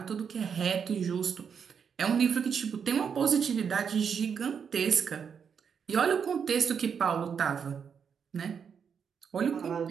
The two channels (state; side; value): quieter; left; 6.9 dB